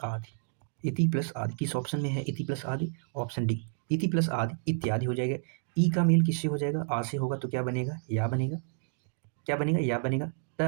आदि। इति प्लस आदि किस ऑप्शन में है? इति प्लस आदि, ऑप्शन डी। इति प्लस आदि इत्यादि हो जाएगा। ई का मेल किससे हो जाएगा? आ से होगा तो क्या बनेगा? या बनेगा। क्या बनेगा? या बनेगा। त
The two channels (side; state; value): left; silent; digital silence